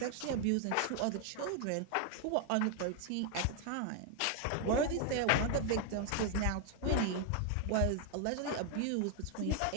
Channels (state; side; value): different; both; correlation 0.00